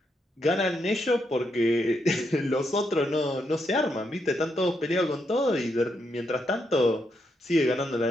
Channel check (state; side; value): normal; both; correlation 0.80